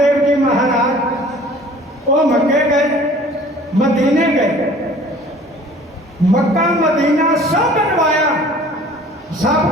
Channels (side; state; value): both; normal; correlation 0.49